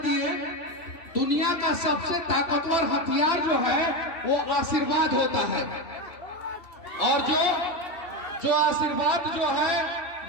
दुनिया का सबसे ताकतवर हथियार जो है वो आशीर्वाद होता है। और जो आशीर्वाद जो है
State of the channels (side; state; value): right; late; 2.7 ms